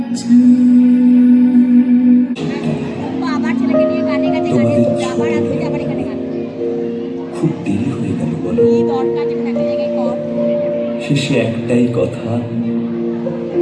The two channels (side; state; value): both; identical; correlation 1.00